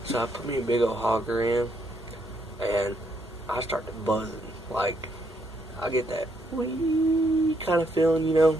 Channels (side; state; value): both; normal; correlation 0.74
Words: so I put me a big old hogger in, and I started buzzing. Like, I get that wee kind of feeling, you know